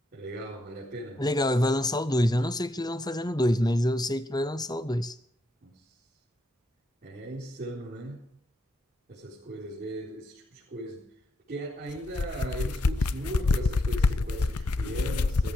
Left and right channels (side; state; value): both; normal; correlation 0.80